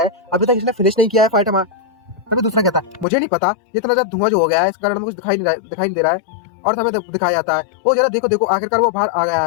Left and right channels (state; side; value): drops out; right; at 3.1 s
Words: अभी तक इसने फिनिश नहीं किया है फाइट हमारा। तभी दूसरा कहता है मुझे नहीं पता, इतना ज्यादा धुआं जो हो गया है इस कारण मुझे दिखाई नहीं दे रहा है। और तभी दिखाया जाता है वो जरा देखो देखो आखिरकार वो बाहर आ गया